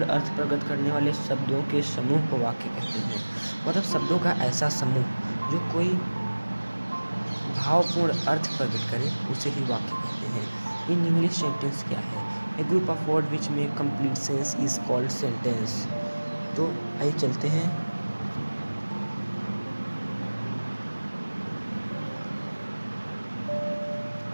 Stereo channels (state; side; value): inverted; both; correlation -1.00